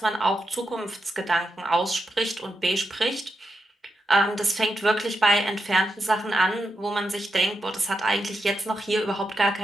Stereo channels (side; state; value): both; normal; correlation 0.86